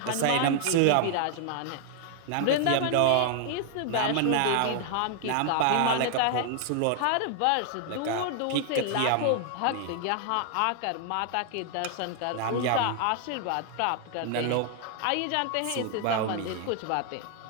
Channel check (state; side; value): different; both; correlation 0.00